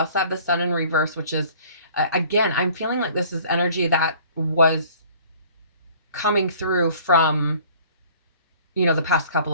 have the Sun in reverse, which is, again, I'm feeling like this is energy that was coming through from, the past couple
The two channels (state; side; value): inverted; both; correlation -0.52